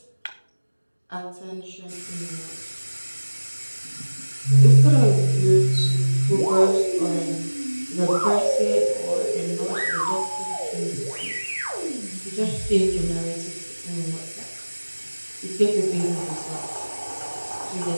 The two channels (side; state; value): both; inverted; correlation -1.00